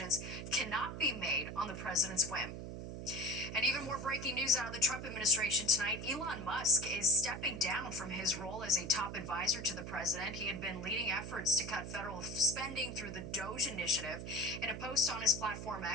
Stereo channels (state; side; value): noise; right; hum, 8 dB below the sound